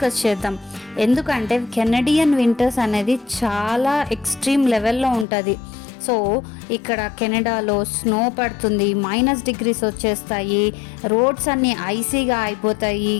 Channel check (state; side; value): drops out; right; at 5.2 s